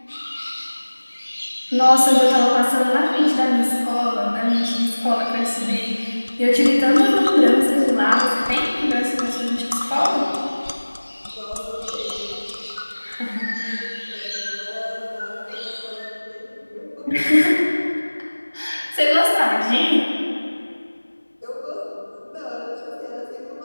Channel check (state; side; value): inverted; both; correlation -1.00